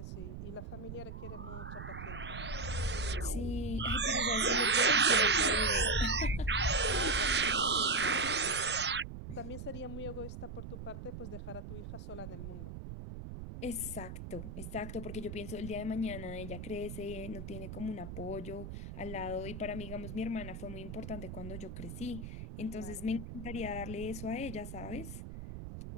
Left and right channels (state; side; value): noise; right; rumble, 8 dB below the sound